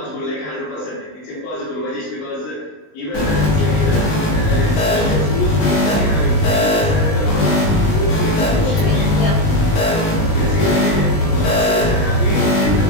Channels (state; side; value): late; right; 19 ms